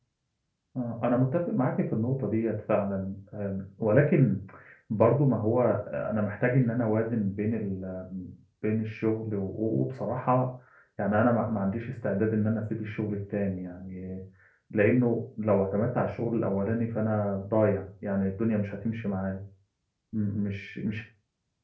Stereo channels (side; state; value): both; identical; correlation 1.00